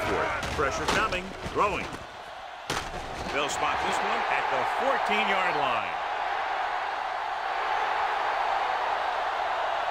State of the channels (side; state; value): both; identical; correlation 1.00